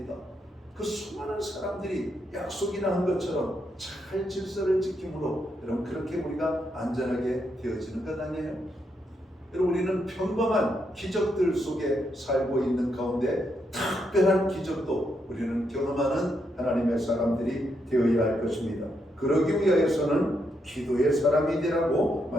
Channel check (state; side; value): normal; both; correlation 0.80